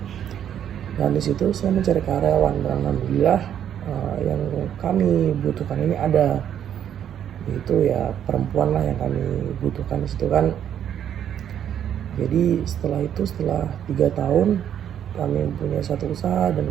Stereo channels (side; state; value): left; quieter; 9.7 dB